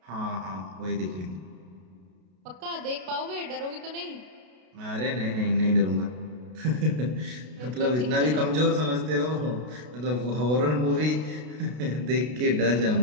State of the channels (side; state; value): left; late; 32 ms